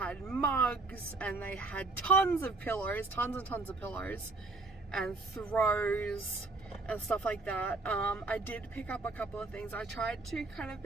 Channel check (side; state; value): left; quieter; 3.4 dB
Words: mugs, and they had tons of pillows, tons and tons of pillows, and throws and stuff like that. I did pick up a couple of things. I tried to kind of